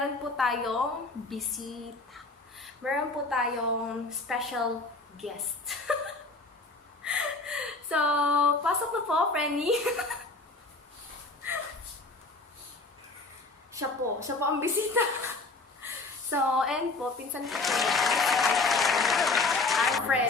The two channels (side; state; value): right; quieter; 3.5 dB